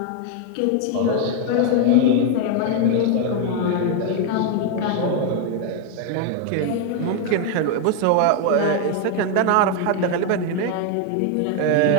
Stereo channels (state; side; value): different; both; correlation 0.01